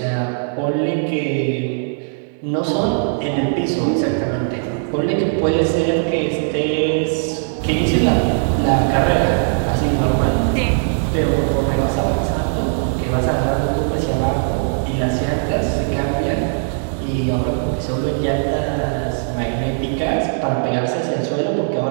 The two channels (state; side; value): silent; left; digital silence